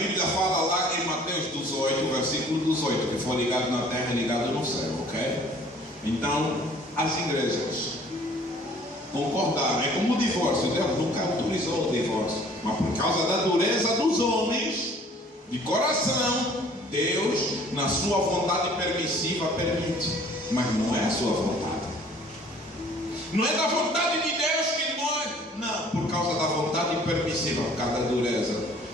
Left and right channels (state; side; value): normal; both; correlation 0.53